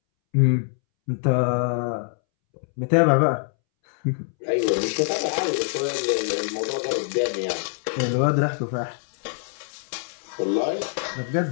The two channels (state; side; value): silent; right; 62 dB below the other